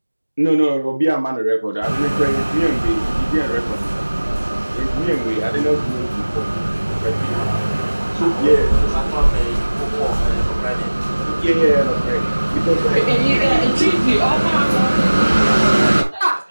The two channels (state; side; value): inverted; both; correlation -1.00